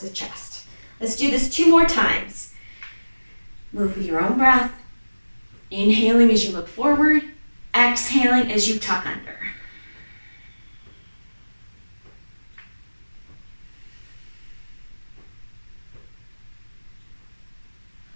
the chest. Let's do this 2 more times. Move with your own breath. Inhaling as you look forward. Exhaling as you tuck under.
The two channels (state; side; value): inverted; both; correlation -1.00